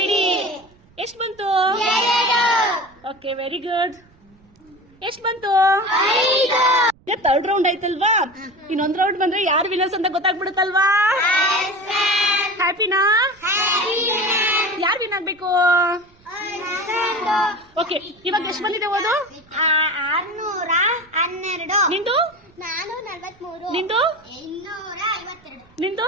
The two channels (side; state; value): right; noise; rumble, 30 dB below the sound